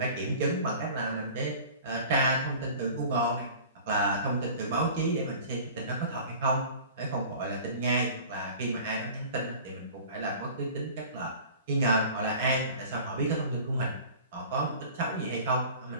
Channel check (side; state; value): both; inverted; correlation -0.42